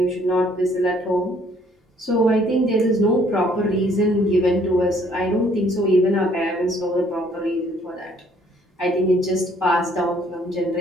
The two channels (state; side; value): normal; both; correlation 0.62